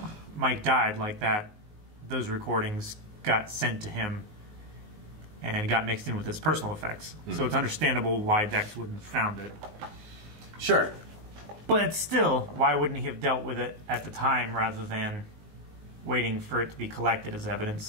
Mike died like that. Those recordings got sent to him and got mixed in with his personal effects. So it's understandable why Dex wouldn't have found it. Sure. But still, why wouldn't he have dealt with it at the time rather than waiting for it to be collected as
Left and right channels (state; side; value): late; left; 19 ms